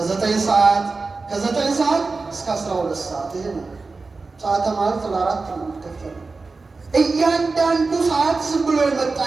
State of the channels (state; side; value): quieter; left; 3.9 dB